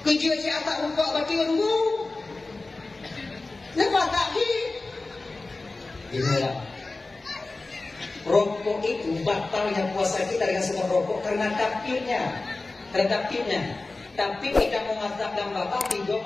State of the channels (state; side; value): quieter; right; 3.4 dB